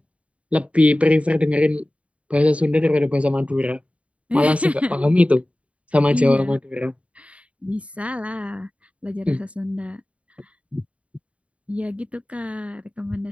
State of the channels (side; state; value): left; late; 0.063 ms